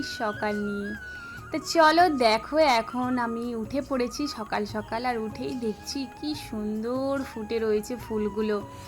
সকাল নিয়ে। তো চলো দেখো, এখন আমি উঠে পড়েছি সকাল সকাল, আর উঠেই দেখছি কি সুন্দর ফুটে রয়েছে ফুলগুলো।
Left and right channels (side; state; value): both; identical; correlation 1.00